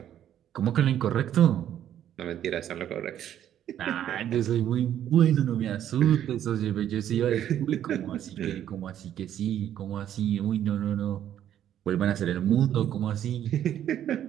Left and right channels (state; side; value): quieter; left; 10.8 dB